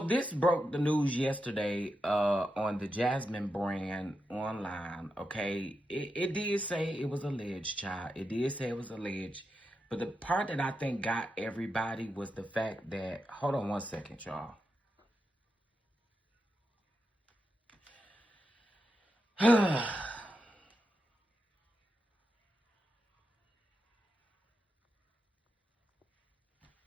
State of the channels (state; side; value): normal; both; correlation 0.87